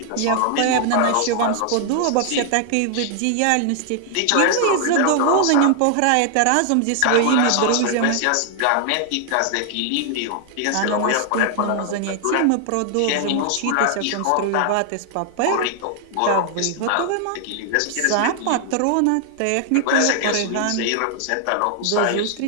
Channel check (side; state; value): both; different; correlation 0.00